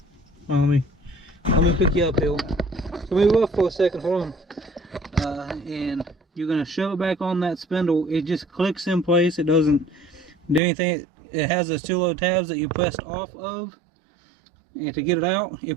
Well, let me pick you up here. So move up for a second, hold on. And you're gonna shove it back on that spindle. It just clicks in place. It doesn't do anything. It has those two little tabs that you pressed off of. And to get it out, it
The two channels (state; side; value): drops out; left; at 10.6 s